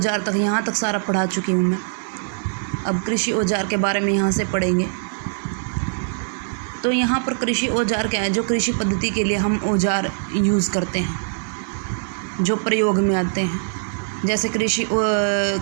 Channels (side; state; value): left; silent; digital silence